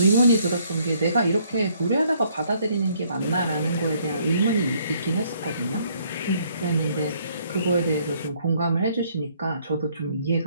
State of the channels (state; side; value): inverted; both; correlation -0.66